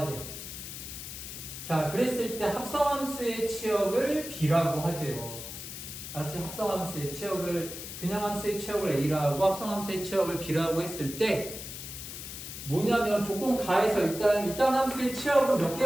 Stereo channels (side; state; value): left; noise; hiss, 9 dB below the sound